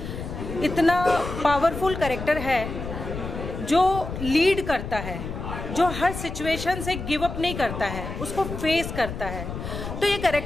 इतना पावरफुल कैरेक्टर है जो लीड करता है, जो हर सिचुएशन से गिव अप नहीं करता है, उसको फेस करता है। तो ये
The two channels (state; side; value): noise; left; rumble, 7 dB below the sound